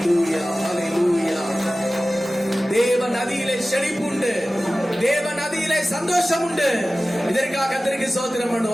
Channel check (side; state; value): both; normal; correlation 0.96